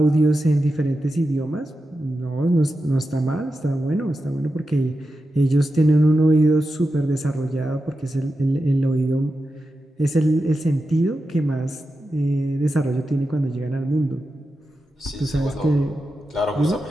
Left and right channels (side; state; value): both; normal; correlation 0.90